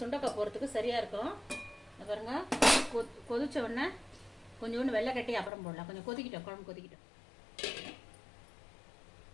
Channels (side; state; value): right; drops out; at 5.5 s